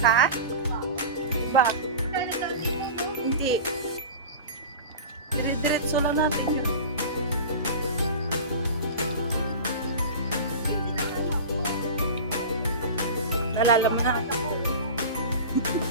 Ba? Hindi. Dire-diretso lang natin yun. Nalala mo na.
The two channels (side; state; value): both; inverted; correlation -0.32